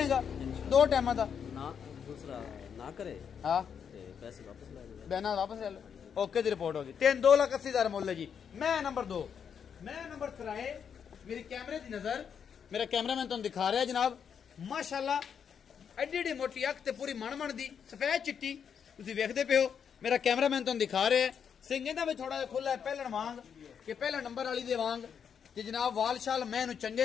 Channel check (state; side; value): quieter; right; 7.4 dB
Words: 2 ਟਾਈਮਾਂ ਦਾ ਨਾ ਦੂਸਰਾ ਨਾ ਕਰੇ ਹਾਂ ਤੇ ਪੈਸੇ ਵਾਪਸ ਲੈ ਲੈ ਬਿਆਨਾ ਵਾਪਸ ਲੈ ਲਓ ਓਕੇ ਦੀ ਰਿਪੋਰਟ ਹੋ ਗਈ 2,80,000 ਮੁੱਲ ਹੈ ਜੀ ਮੈਂ ਨੰਬਰ 2 ਮੈਂ ਨੰਬਰ 3 ਮੇਰੀ ਕੈਮਰੇ ਦੀ ਨਜ਼ਰ ਮੇਰਾ ਕੈਮਰਾਮੈਨ ਤੁਹਾਨੂੰ ਦਿਖਾ ਰਿਹਾ ਜਨਾਬ ਮਾਸ਼ਾਅੱਲਾ ਐਡੀ ਮੋਟੀ ਅੱਖ ਤੇ ਪੂਰੀ ਮਣ ਦੀ ਸਫੈਦ ਚਿੱਟੀ ਤੁਸੀਂ ਵੇਖਦੇ ਪਿਓ ਮੇਰਾ ਕੈਮਰਾਮੈਨ ਤੁਹਾਨੂੰ ਦਿਖਾ ਰਿਹਾ ਸਿੰਘ ਇਹਦਾ ਵੀ ਥੋੜਾ ਜਿਹਾ ਖੁੱਲਾ ਪਹਿਲਣ ਵਾਂਗ ਕਿ ਪਹਿਲਾ ਨੰਬਰ ਵਾਲੀ ਦੇ ਵਾਂਗ ਤੇ ਜਨਾਬ ਵਾਲਸ਼ਾਲ ਮੈਂ ਇਹਨੂੰ